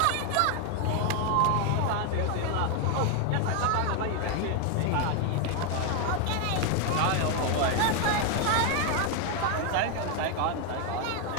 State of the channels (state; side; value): different; both; correlation 0.01